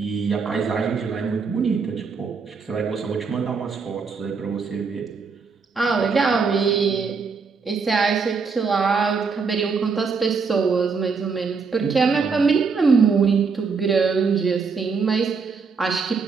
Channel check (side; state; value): left; quieter; 5.2 dB